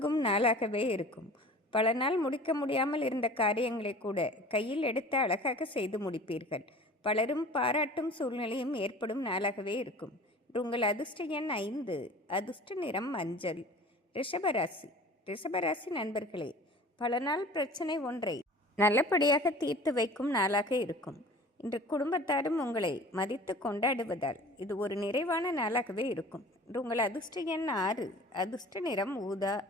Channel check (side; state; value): both; normal; correlation 0.43